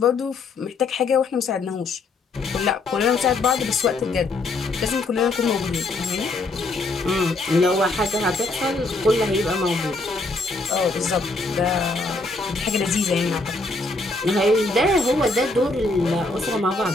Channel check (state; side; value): quieter; right; 3.3 dB